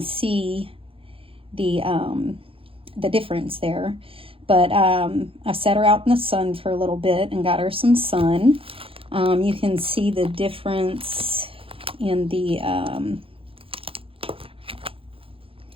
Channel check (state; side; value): late; left; 0.27 ms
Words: see the difference there, but I set her out in the sun for a little bit and got her some sun. You can see the difference in the